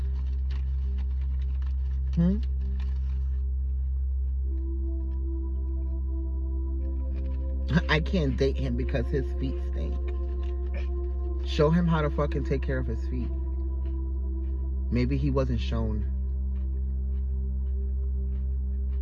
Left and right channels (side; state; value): both; identical; correlation 1.00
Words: I can't date him because his feet stink. Show him how to fucking take care of his feet. Maybe he wasn't shown.